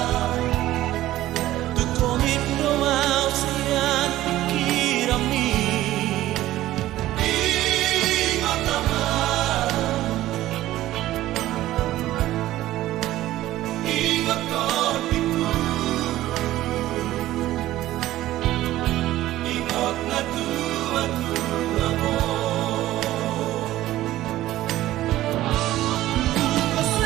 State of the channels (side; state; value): left; quieter; 15.0 dB